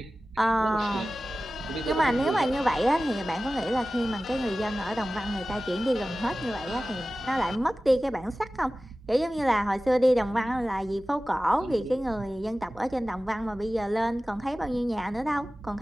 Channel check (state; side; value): normal; both; correlation 0.96